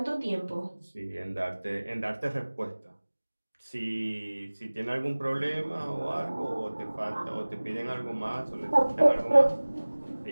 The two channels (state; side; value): inverted; both; correlation -1.00